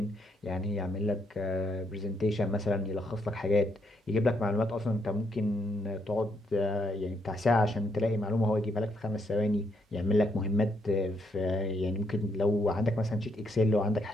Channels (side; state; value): both; normal; correlation 0.75